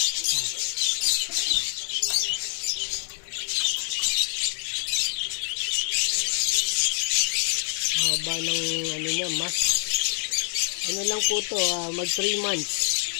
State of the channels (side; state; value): right; silent; digital silence